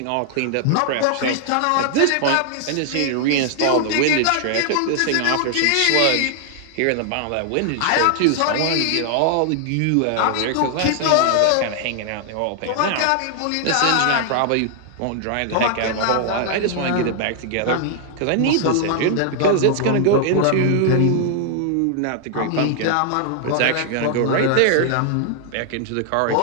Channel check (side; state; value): both; different; correlation 0.00